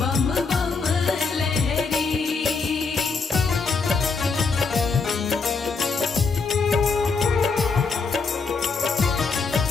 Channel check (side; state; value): right; quieter; 4.6 dB